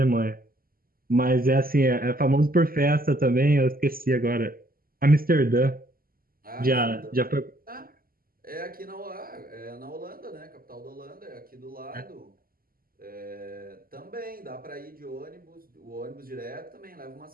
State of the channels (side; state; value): left; late; 0.42 ms